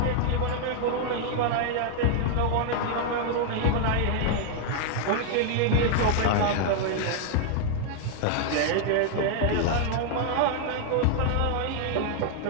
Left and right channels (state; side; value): different; both; correlation 0.00